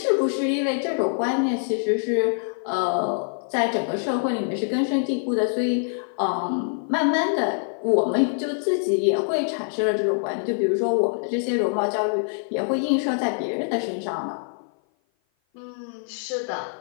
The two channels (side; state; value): right; silent; 55 dB below the other